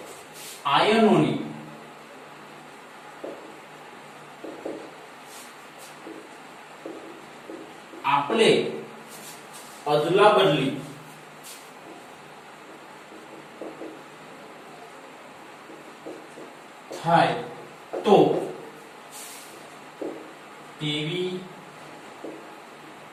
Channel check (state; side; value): identical; both; correlation 1.00